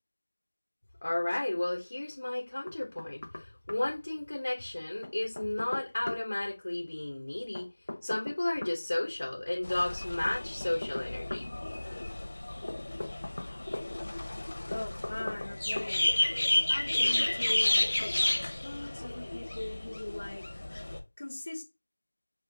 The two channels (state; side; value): inverted; both; correlation -1.00